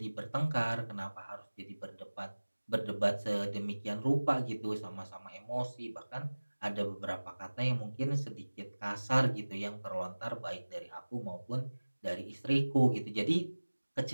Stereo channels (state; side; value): inverted; both; correlation -1.00